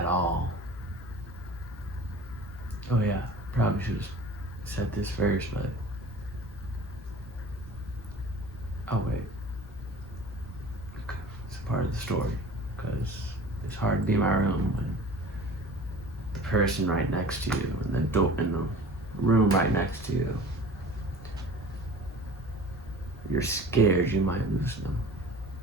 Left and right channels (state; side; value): normal; both; correlation 0.42